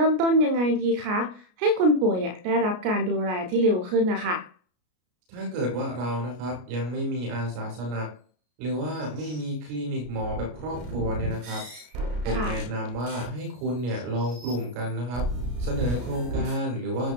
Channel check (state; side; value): late; left; 33 ms